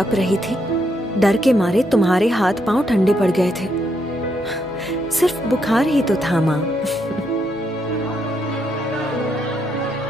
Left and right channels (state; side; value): normal; both; correlation 0.77